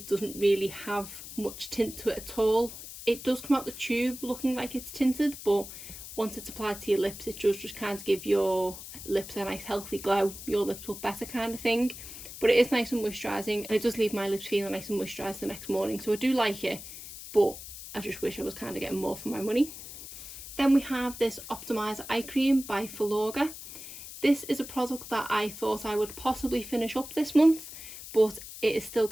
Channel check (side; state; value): left; noise; hiss, 12 dB below the sound